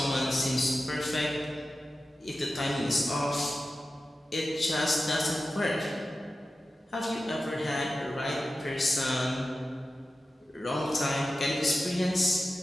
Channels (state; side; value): normal; both; correlation 0.93